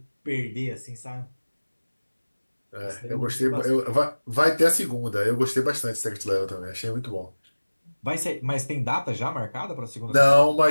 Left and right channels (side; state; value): both; inverted; correlation -1.00